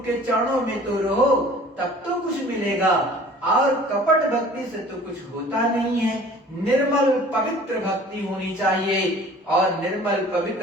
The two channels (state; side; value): normal; both; correlation 0.48